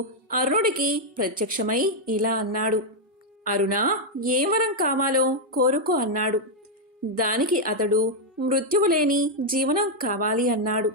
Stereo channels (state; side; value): normal; both; correlation -0.01